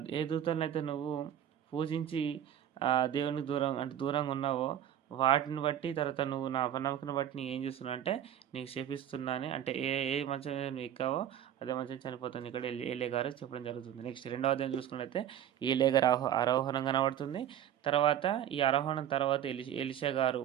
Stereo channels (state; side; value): quieter; left; 10.4 dB